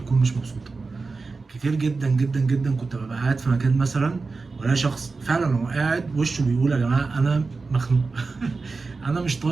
مش مبسوطه. كتير جدا جدا جدا كنت ببقى قاعد في مكان مثلا، ولا شخص فعلا هو قاعد وشه بيقول يا جماعه انا مخنوق انا مش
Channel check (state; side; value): quieter; left; 4.1 dB